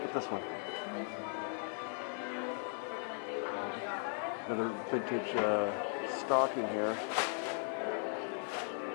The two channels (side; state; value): right; silent; 53 dB below the other